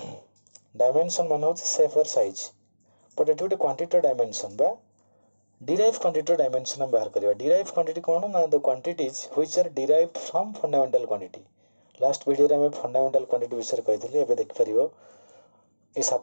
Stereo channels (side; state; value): both; inverted; correlation -1.00